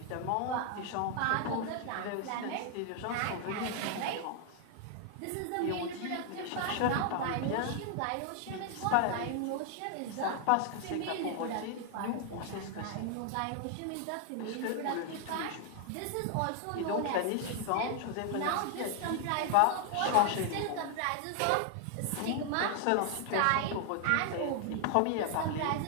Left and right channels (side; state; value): both; different; correlation 0.00